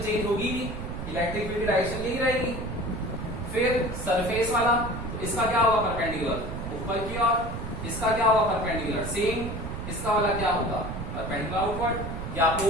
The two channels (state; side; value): noise; right; rumble, 7 dB below the sound